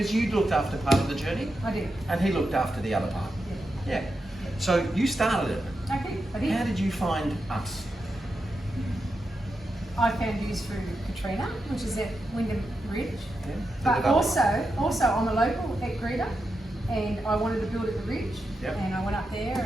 you looked after part of the journey. I did. And he looked after the other part. Yeah. So you started it. I did. How did you find us? I found you through Katrina, which is at Wyndham Ridge. Yeah. But also I'm a local at Greta, and I wanted to build at the Ridge. And I went up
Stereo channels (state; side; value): normal; both; correlation 0.87